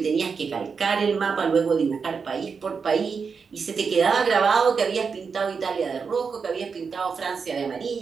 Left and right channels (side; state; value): left; quieter; 5.5 dB